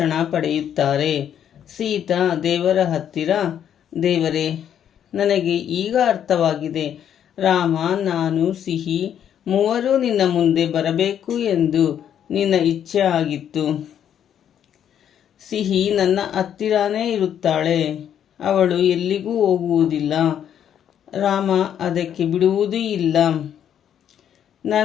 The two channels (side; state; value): right; quieter; 9.5 dB